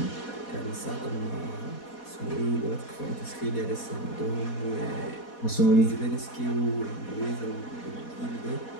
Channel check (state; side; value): late; right; 4.1 ms